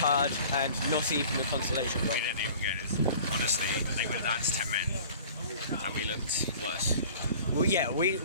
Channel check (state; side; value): inverted; both; correlation -0.45